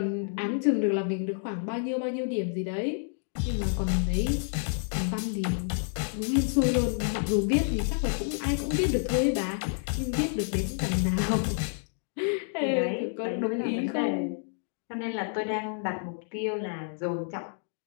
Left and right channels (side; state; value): right; silent; digital silence